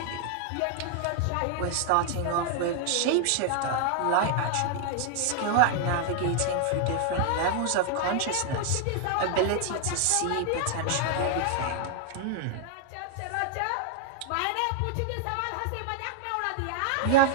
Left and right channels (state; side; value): different; both; correlation 0.00